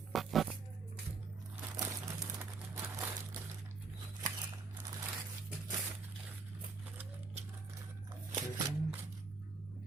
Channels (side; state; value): left; quieter; 4.5 dB